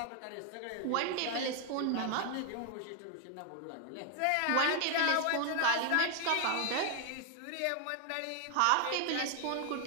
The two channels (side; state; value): both; different; correlation 0.00